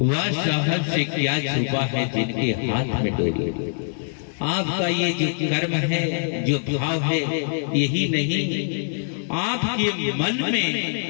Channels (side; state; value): right; silent; digital silence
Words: वह साहब से क्या छुपा है जिनके हाथ में डोरी। आपका ये जो कर्म है, जो भाव है, यही नहीं, आपके मन